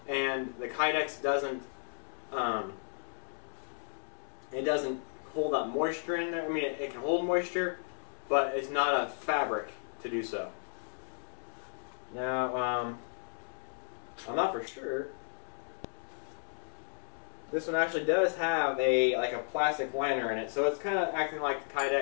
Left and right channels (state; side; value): silent; right; 55 dB below the other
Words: And the Kydex doesn't, it doesn't hold that moisture in there. I mean, it can hold moisture, but it's not a fabric to do so. Now, I'm not for sure. This one actually does have like a plastic liner in it, so it's kind of acting like the